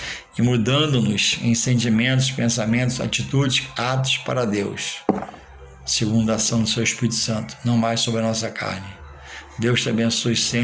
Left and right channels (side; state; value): both; identical; correlation 1.00